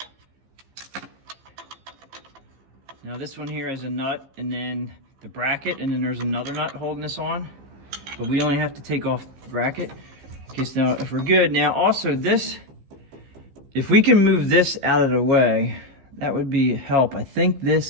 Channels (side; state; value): left; late; 15 ms